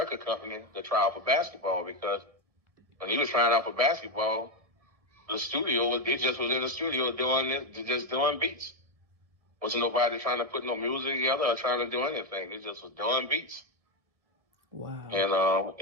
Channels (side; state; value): left; late; 1.7 ms